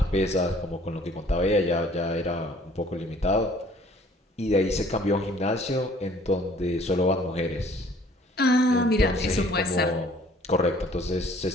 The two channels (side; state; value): both; normal; correlation 0.56